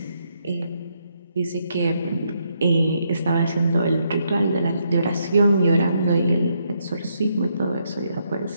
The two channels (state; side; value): inverted; both; correlation -0.76